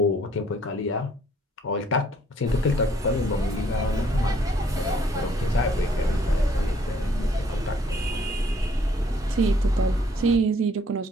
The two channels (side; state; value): both; normal; correlation 0.63